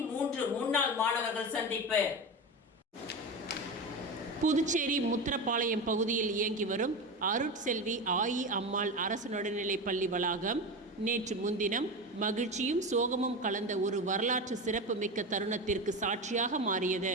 முன்னாள் மாணவர்கள் சந்திப்பு. புதுச்சேரி முத்திரப்பாளையம் பகுதியில் இயங்கி வரும் அருட்செல்வி ஆயி அம்மாள் அரசு நடுநிலைப் பள்ளி வளாகம் நேற்று முன்தினம் மகிழ்ச்சியும் சோகமும் கலந்த ஒரு வரலாற்று சிறப்பு மிக்க தருணத்திற்கு சாட்சியாக மாறியது.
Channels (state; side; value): normal; both; correlation 0.22